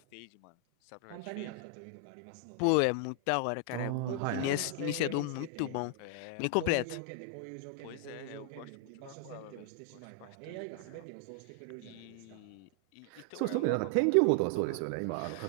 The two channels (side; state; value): both; different; correlation 0.00